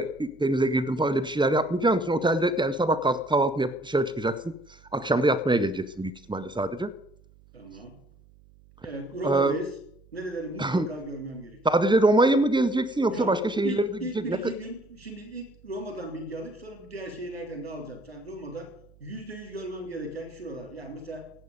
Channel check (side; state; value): right; noise; hum, 27 dB below the sound